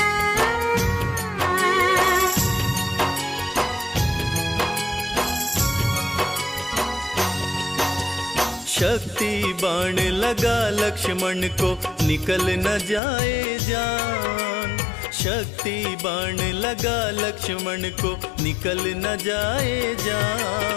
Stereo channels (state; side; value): drops out; right; at 13.0 s